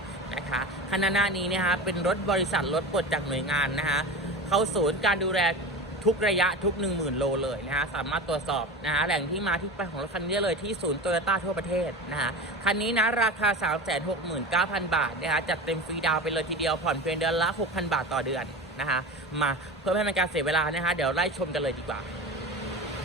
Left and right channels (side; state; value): both; normal; correlation 0.29